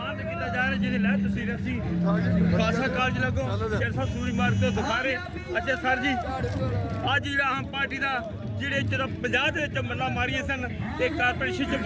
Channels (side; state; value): both; identical; correlation 1.00